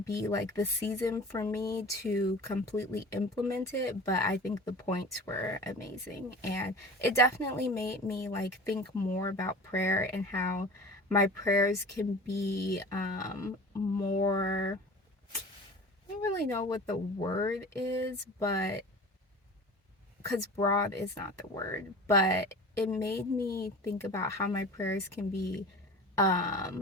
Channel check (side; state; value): both; normal; correlation 0.38